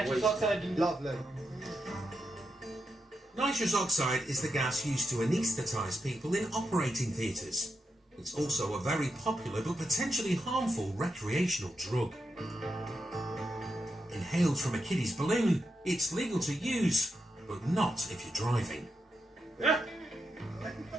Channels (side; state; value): both; normal; correlation 0.85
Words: oxide and... Lovely. Nitrous oxide is the gas used to anaesthetise people in operating theatres. It's also a very popular but potentially harmful recreational drug. Inhaled from a kiddie's balloon, it's legal to use, but not if you're driving.